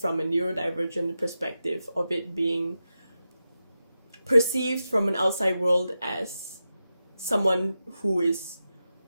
a neurodivergent perspective of it being perceived from an outside world as someone who is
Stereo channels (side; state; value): both; inverted; correlation -0.91